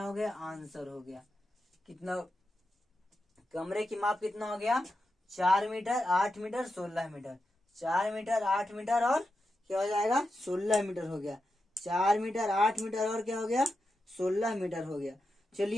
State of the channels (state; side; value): normal; both; correlation 0.88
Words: हो गया, आंसर हो गया। कितना, कमरे की माप कितना हो गया, 4 metre 8 metre 16 metre. 4 metre 8 metre और क्या हो जाएगा, 16 मीटर हो गया। 4 मीटर 8 मीटर और क्या हो गया, 16 मीटर हो गया।